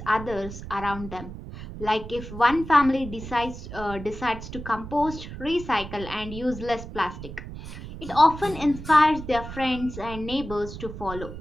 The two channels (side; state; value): right; noise; rumble, 11 dB below the sound